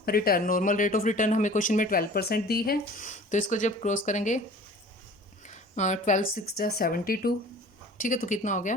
return. Normal rate of return हमें क्वेश्चन में 12% दी है, तो इसको जब क्रॉस करेंगे 12 6 जा 72, ठीक है, तो कितना हो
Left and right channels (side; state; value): both; normal; correlation 0.45